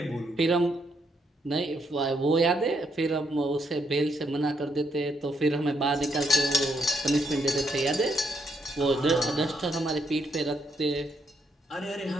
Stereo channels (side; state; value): both; normal; correlation 0.76